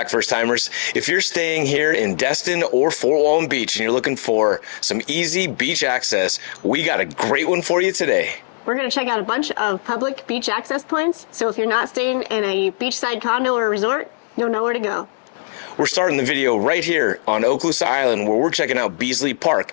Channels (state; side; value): silent; right; digital silence